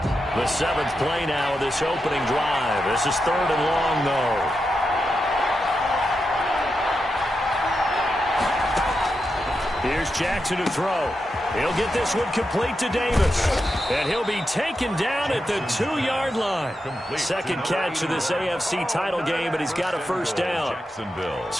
The 7th play now of this opening drive. This is 3rd and long, though. Here's Jackson to throw. He'll get this one complete to Davis. And he'll be taken down at the 2-yard line. Second catch of this AFC title game, but he's got a first down.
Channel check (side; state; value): both; normal; correlation 0.87